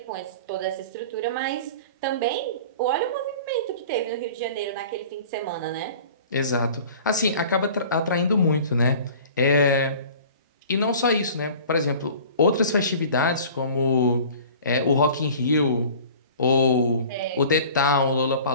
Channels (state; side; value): inverted; both; correlation -0.44